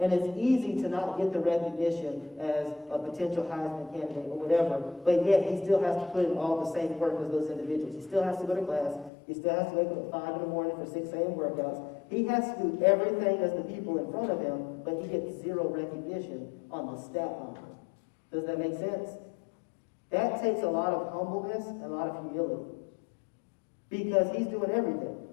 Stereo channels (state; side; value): drops out; right; at 9.1 s